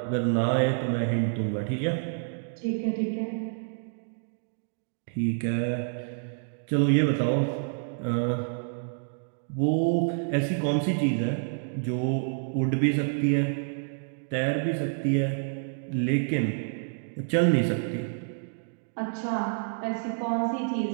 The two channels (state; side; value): silent; left; digital silence